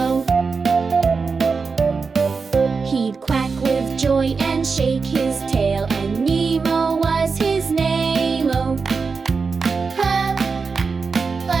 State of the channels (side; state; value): left; quieter; 4.9 dB